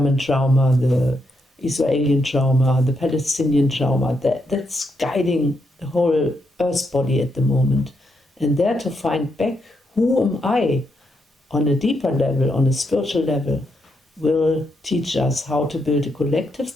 trauma, the Israeli trauma, the Palestinian trauma, that's guiding the whole earth body at the moment. And there to find back, who am I on a deeper level, on a spiritual level, will teach us how to build a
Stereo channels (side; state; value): both; normal; correlation 0.80